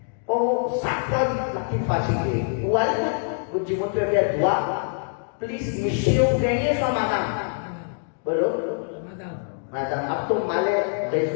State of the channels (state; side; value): silent; right; digital silence